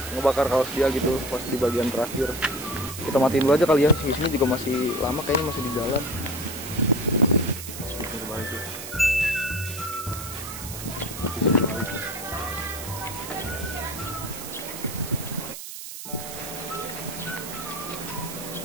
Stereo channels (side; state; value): right; noise; hiss, 10 dB below the sound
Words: ngebakar kaos dia gitu pas di bagian terakhir. Kita matiin dulu aja kali ya. Si sini juga masih lama, kayaknya masih di jalan. Speaker balik ya.